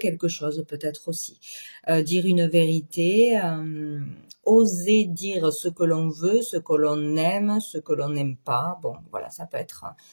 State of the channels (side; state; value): both; inverted; correlation -1.00